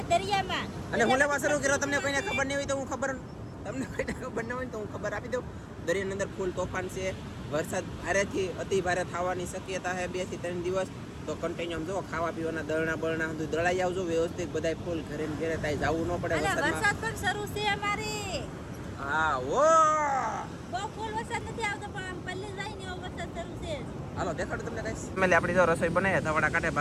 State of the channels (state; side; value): identical; both; correlation 1.00